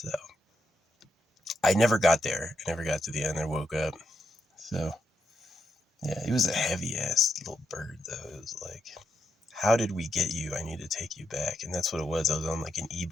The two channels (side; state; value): both; normal; correlation 0.82